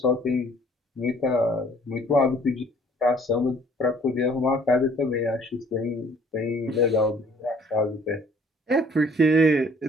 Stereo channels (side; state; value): both; normal; correlation 0.58